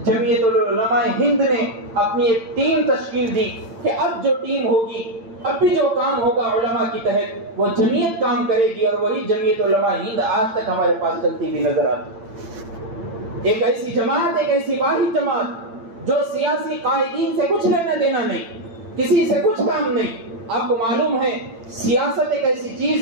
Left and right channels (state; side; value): late; left; 8.8 ms